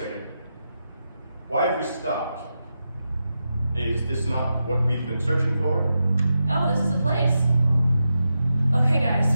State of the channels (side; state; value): both; inverted; correlation -0.88